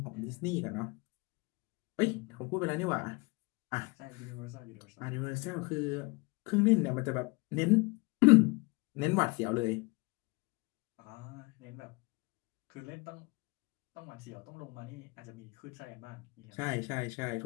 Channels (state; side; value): quieter; right; 27.3 dB